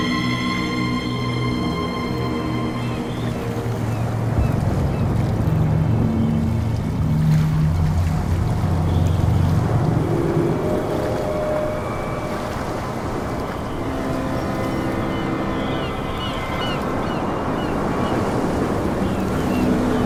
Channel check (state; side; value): identical; both; correlation 1.00